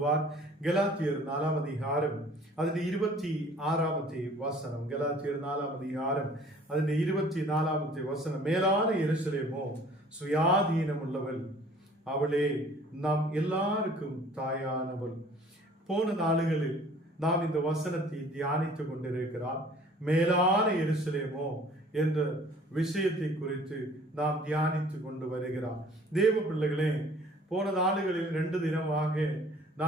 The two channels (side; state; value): both; normal; correlation 0.52